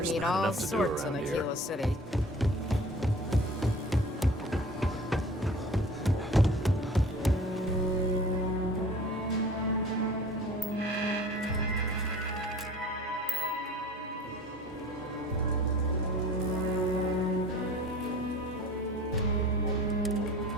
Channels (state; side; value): normal; both; correlation 0.44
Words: There's meet not all enough to do sorts in around here. Aquila City.